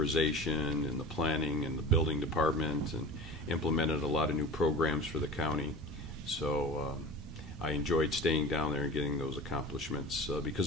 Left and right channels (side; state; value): both; normal; correlation 0.35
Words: and the planning and the building department, and implemented a lot of new programs for the county. So I enjoyed staying down there and getting those accomplishments